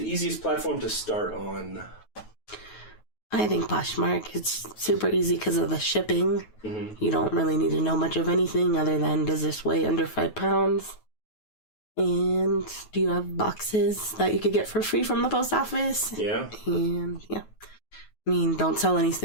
easiest platform to start on? I think Poshmark. It's super easy because of the shipping. Mm-hmm. You don't really need to know much of anything other than, does this weigh under 5 pounds? And do you have boxes that you could get for free from the post office? Yeah. And yeah. I mean, don't sell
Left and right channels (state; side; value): late; right; 9.3 ms